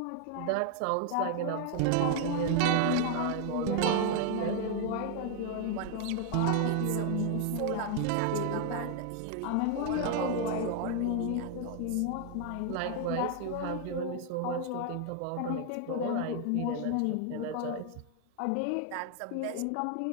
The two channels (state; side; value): different; both; correlation 0.00